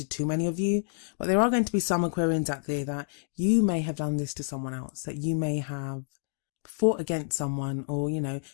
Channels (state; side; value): silent; right; digital silence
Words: too many of you, but there are going to be some Aquarians out there that you may have done this to someone else, that you may have fought against someone, or, you know,